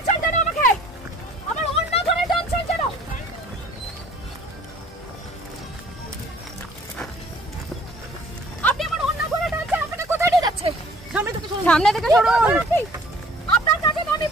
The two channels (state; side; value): normal; both; correlation 0.54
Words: সামনে থেকে সরুন। আপনার কাছে তো আমি